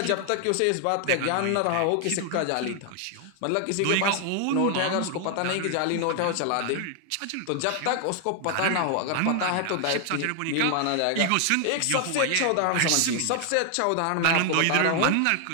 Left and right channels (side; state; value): both; different; correlation 0.00